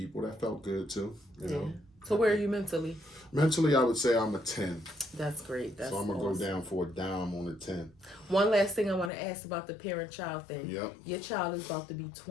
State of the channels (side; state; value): right; drops out; at 9.1 s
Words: that felt good too. You know. So where are you mentally? Mentally, I would say I'm a 10. That's great. So I'm going to go down for a dime on a 10. One last thing I want to ask about the parent-child thing. Yep. Your child is about to be